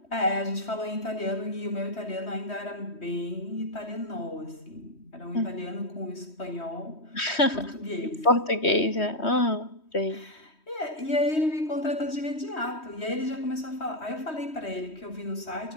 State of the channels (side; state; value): right; late; 3.1 ms